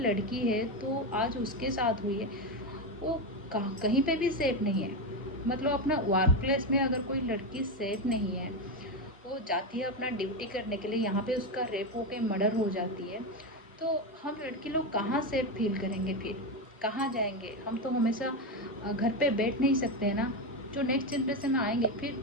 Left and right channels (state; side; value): normal; both; correlation 0.12